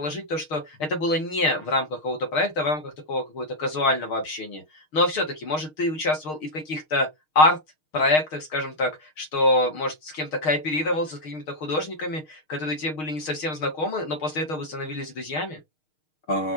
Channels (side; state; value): right; late; 6.5 ms